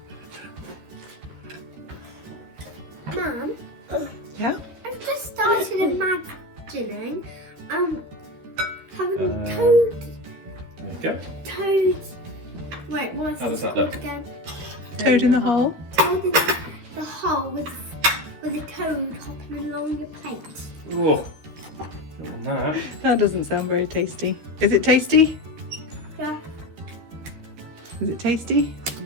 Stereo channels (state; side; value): late; left; 13 ms